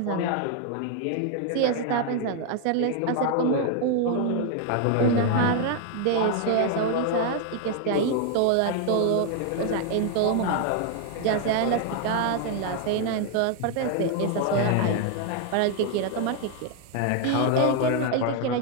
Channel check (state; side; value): different; both; correlation 0.00